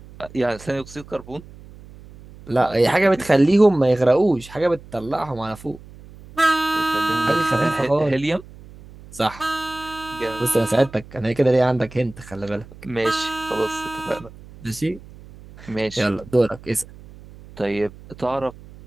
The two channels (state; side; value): noise; right; hum, 19 dB below the sound